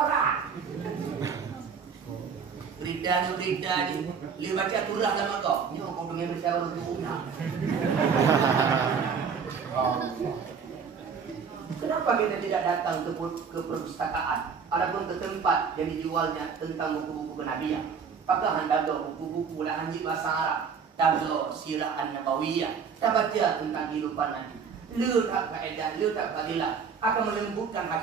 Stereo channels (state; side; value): quieter; left; 6.2 dB